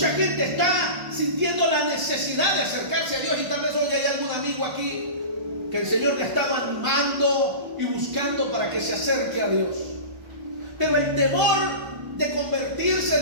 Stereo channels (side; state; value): left; late; 1.3 ms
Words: gente está sintiendo la necesidad de acercarse a Dios, y tal vez hoy hay algún amigo aquí que el Señor le ha estado animando y buscando para que se acerque a Dios. Pero el temor de convertirse,